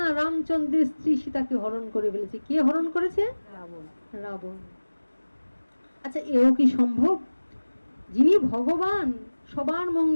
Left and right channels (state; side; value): inverted; both; correlation -1.00